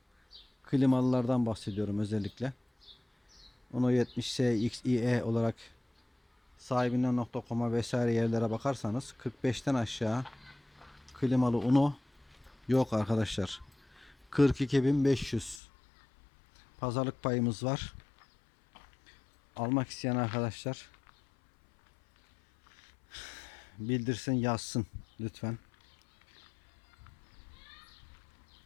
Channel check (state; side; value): drops out; right; at 15.6 s